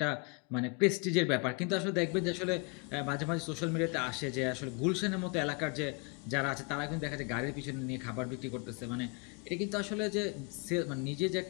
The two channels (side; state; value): right; quieter; 31.9 dB